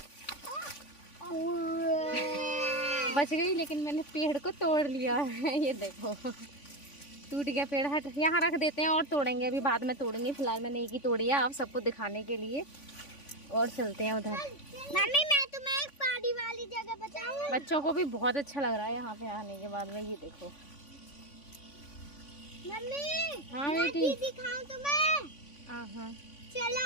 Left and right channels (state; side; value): late; right; 3.5 ms